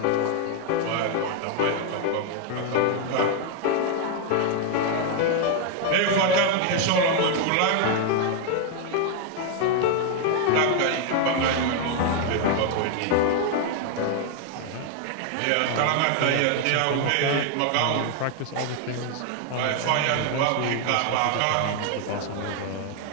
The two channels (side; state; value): both; different; correlation 0.00